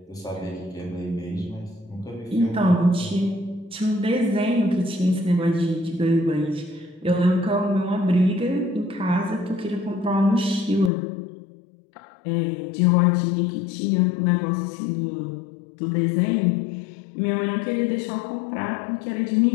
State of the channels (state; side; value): drops out; right; at 10.9 s